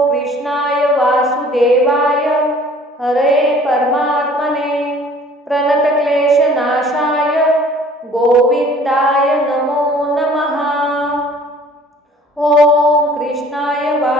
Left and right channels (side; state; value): both; normal; correlation 0.52